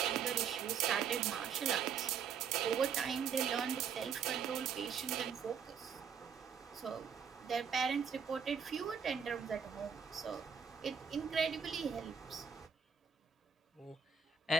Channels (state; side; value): quieter; left; 7.0 dB